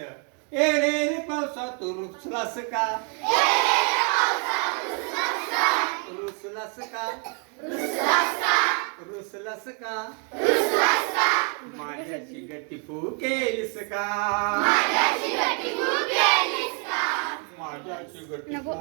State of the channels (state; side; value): quieter; left; 39.0 dB